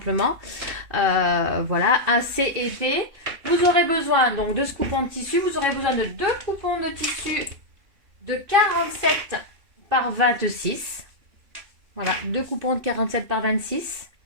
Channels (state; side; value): late; left; 2.6 ms